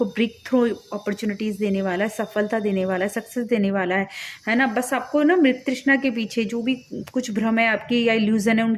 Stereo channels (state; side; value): identical; both; correlation 1.00